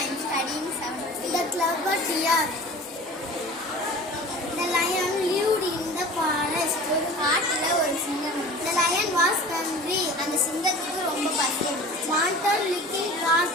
am studying 7th B. The clever deer. The lion lived in the forest. ஒரு காட்டுல ஒரு சிங்கம் இருந்துச்சு. The lion was hungry. அந்த சிங்கத்துக்கு ரொம்ப பசி இருந்துச்சு. Wanted little raw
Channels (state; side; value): normal; both; correlation 0.41